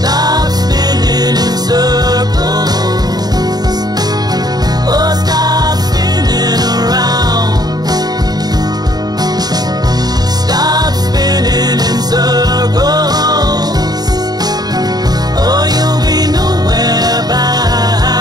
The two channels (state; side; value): late; left; 0.19 ms